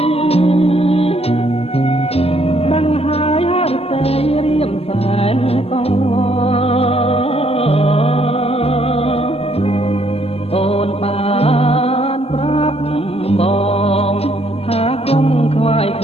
ដឹងហើយហឫទ័យរៀមសែនកងអូនបានប្រាប់បងថាកុំខ្វាយខ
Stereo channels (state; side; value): late; right; 0.29 ms